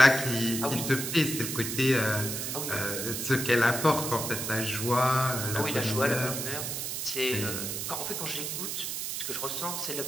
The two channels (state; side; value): noise; right; hiss, 3 dB below the sound